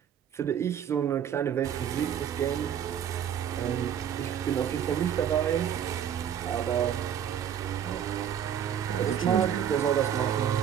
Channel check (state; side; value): quieter; left; 9.2 dB